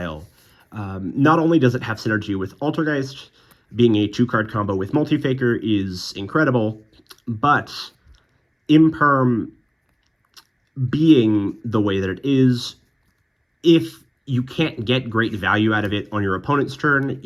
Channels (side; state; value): both; identical; correlation 1.00